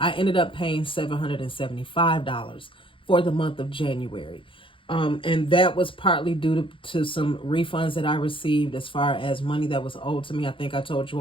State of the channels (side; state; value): right; late; 0.25 ms